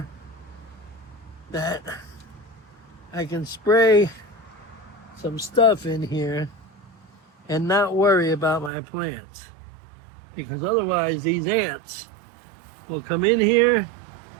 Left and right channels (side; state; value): left; drops out; at 8.7 s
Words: that I can spray some stuff in here and not worry about my plants. Because otherwise these ants will come in here